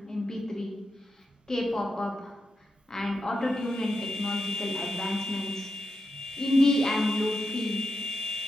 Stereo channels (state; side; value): normal; both; correlation 0.86